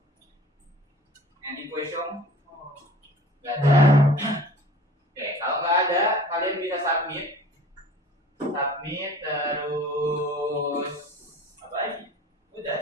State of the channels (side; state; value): both; normal; correlation 0.45